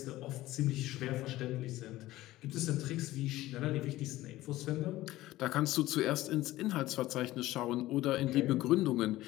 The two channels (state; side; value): quieter; right; 16.5 dB